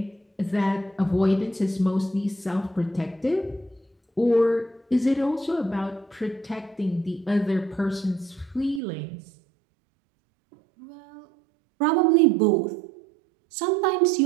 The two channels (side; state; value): left; drops out; at 8.8 s